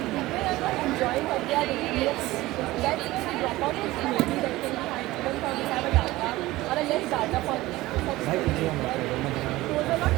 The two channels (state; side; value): quieter; left; 18.2 dB